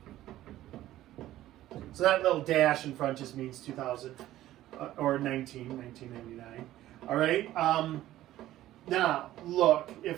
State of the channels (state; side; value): quieter; left; 14.3 dB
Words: So that little dash in front just means 2000. or 1999. All right. Now, look,